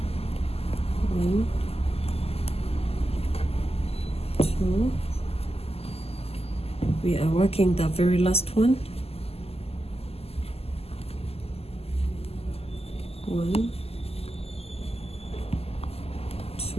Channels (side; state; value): right; late; 0.29 ms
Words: 1, 2. We are working the very last one. 1,